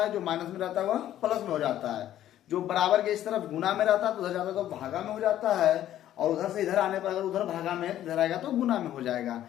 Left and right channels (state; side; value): quieter; right; 12.2 dB